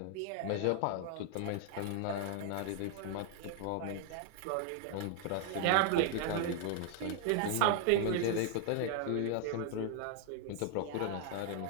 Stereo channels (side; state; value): both; different; correlation 0.00